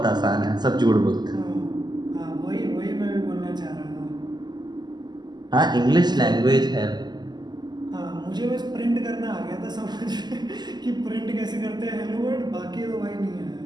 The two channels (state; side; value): late; left; 0.21 ms